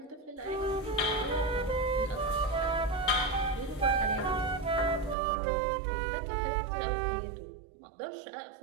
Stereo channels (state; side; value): drops out; left; at 5.2 s